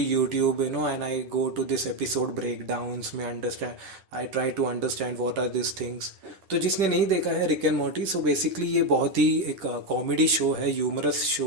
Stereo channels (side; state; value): left; late; 10 ms